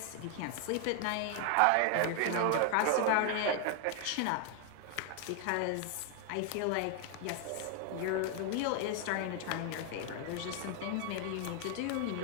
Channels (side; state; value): both; different; correlation 0.00